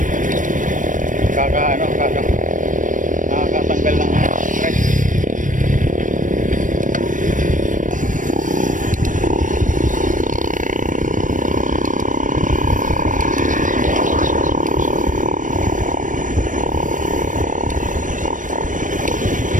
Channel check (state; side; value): late; left; 0.38 ms